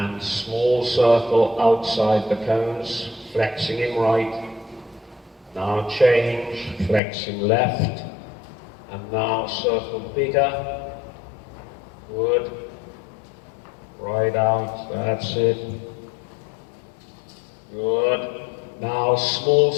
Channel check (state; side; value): drops out; right; at 7.0 s